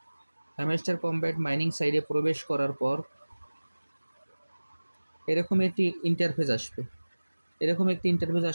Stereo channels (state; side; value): inverted; both; correlation -1.00